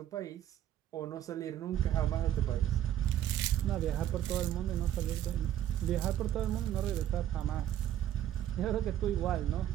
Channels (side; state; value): left; quieter; 11.5 dB